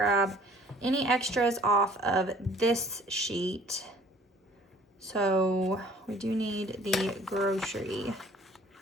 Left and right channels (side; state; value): both; normal; correlation 0.53